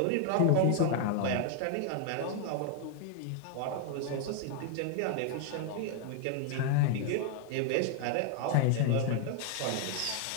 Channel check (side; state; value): both; different; correlation 0.00